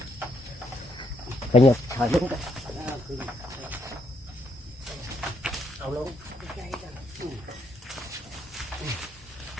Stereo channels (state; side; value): normal; both; correlation 0.74